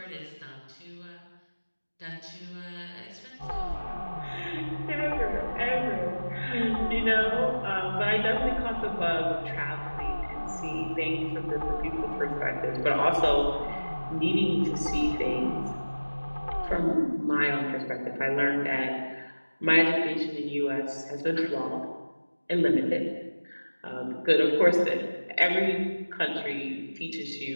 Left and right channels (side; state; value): both; inverted; correlation -1.00